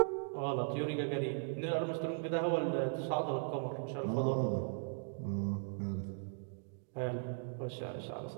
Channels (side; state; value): left; silent; digital silence